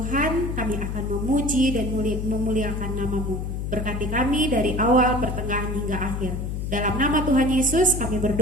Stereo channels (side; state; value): left; noise; hum, 3 dB below the sound